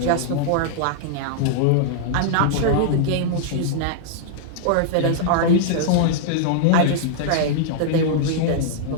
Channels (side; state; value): both; different; correlation -0.01